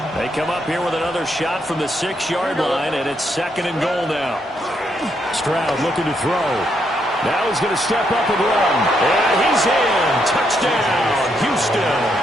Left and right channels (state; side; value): normal; both; correlation 0.77